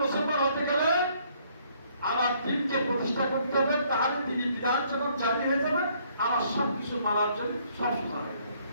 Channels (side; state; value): both; inverted; correlation -0.65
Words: মুসলমান হতে গেলে আমার দিনকে প্রতিষ্ঠা করতে হবে, তার তিনি বিধান যখন জারি হয়ে যাবে আমার সবকিছু মানার জন্য সব সোজা হয়ে যাবে,